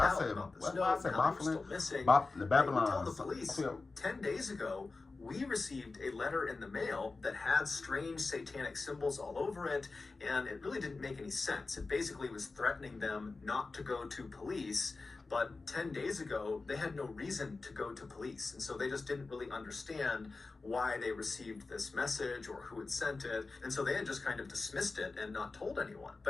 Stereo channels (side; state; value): right; quieter; 3.8 dB